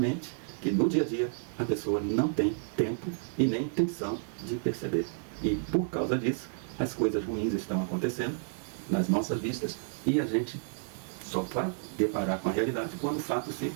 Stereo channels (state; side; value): silent; left; digital silence